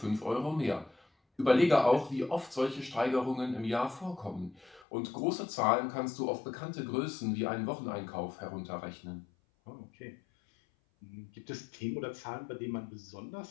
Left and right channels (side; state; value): right; drops out; at 4.9 s